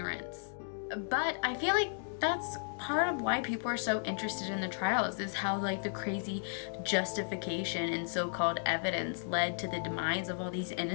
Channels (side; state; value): right; silent; digital silence